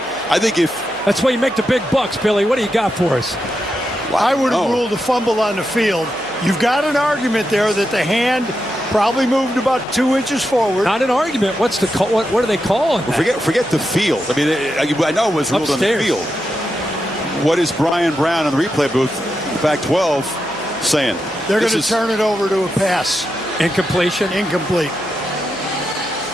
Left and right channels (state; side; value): noise; left; hum, 29 dB below the sound